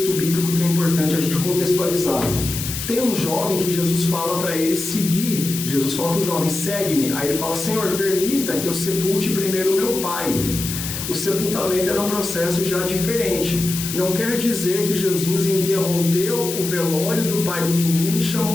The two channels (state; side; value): noise; left; hiss, 6 dB below the sound